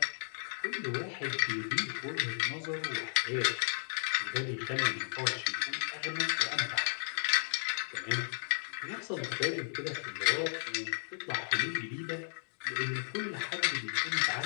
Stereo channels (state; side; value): silent; right; digital silence